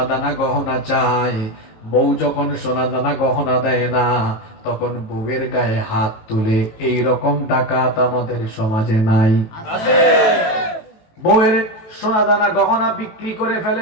দানা গহনা চায়, বউ যখন সোনা দানা গহনা দেয় না, তখন বউয়ের গায়ে হাত তুলে। এই রকম ডাকাত আমাদের সমাজে নাই? বউয়ের সোনা দানা গহনা বিক্রি করে ফেলে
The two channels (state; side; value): late; right; 18 ms